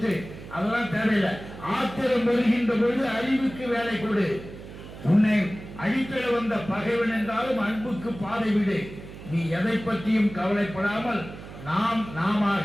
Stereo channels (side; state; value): right; noise; hum, 14 dB below the sound